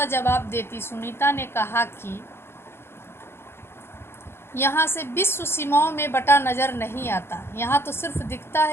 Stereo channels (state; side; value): late; right; 0.12 ms